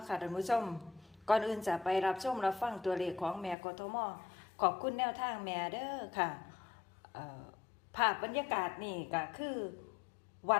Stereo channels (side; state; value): right; drops out; at 3.6 s